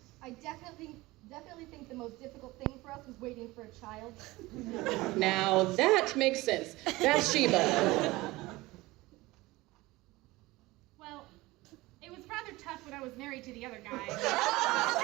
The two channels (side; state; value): left; quieter; 20.2 dB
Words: I definitely think the most difficult thing for us was waiting for a child. Now, that makes sense. Bathsheba. Well, it was rather tough when I was married to the other guy.